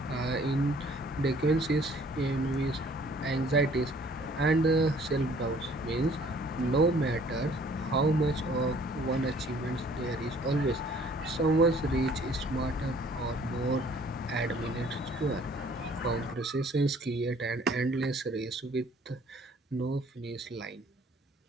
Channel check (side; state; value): both; normal; correlation 0.57